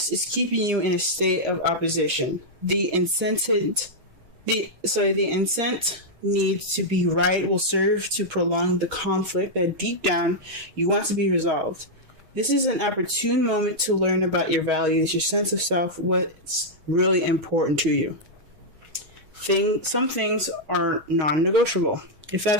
is keeping you in a state of opposition. The incent need to be right will serve to prolong the conflict that deep down you want to be resolved. This is an opportune moment to learn about your values, your sense of self, what's really important to you. Some things are non-negotiable. If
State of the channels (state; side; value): late; left; 6.3 ms